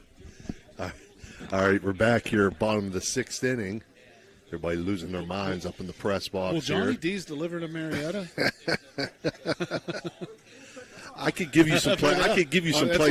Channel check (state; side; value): identical; both; correlation 1.00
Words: All right, we're back here, bottom of the 6th inning. Everybody losing their minds up in the press box. Well, Johnny here. D's delivered to Marietta. I could give you some. I could give you some